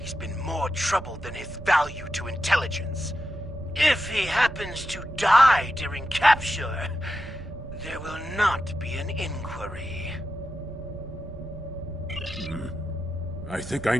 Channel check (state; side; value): noise; right; rumble, 12 dB below the sound